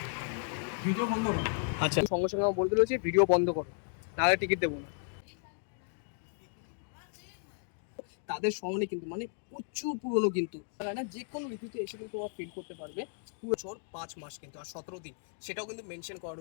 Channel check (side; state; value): right; silent; 55 dB below the other